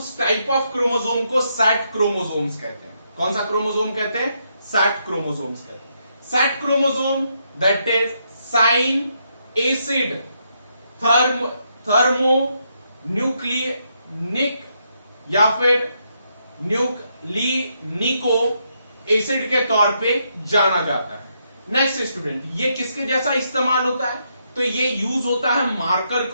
टाइप ऑफ क्रोमोसोम को सैट क्रोमोसोम्स कहते हैं। कौन सा क्रोमोसोम कहते हैं? सैट क्रोमोसोम्स कहते हैं। SAT chromosome that is sine acid thermo न्यूक्लिनिक या फिर न्यूक्लिनिको एसिड के तौर पे जाना जाता है। नेक्स्ट स्टूडेंट, ये किसके जैसा इस्तेमाल होता है? तो ये यूज होता है मार्कर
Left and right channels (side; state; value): both; inverted; correlation -0.78